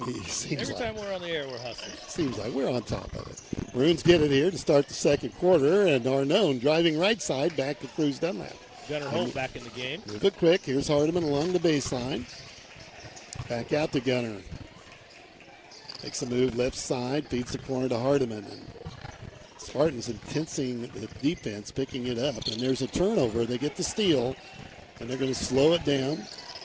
time we're on the air, we're hustling. Seems like we're on top of it. Maroons get it here to start the second quarter, and Arnone driving right side back to Cruz Dunlap. Gunnar Holt back in the game. Move it quick. Here's Hardiman along the baseline. Back out to Gunnar. Makes a move left side, feeds the corner to Hardiman. And Spartans intensing the defense, picking it up. And there's a turnover. They get the steal, and they're going to slow it down.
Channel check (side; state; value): both; identical; correlation 1.00